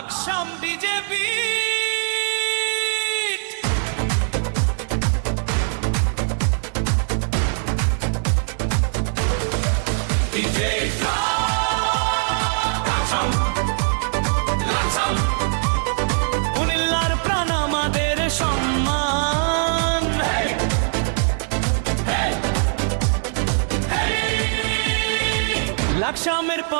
বিজেপি কুমিল্লার প্রাণ আমাদের সম্মান লাকসামের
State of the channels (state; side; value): silent; left; 65 dB below the other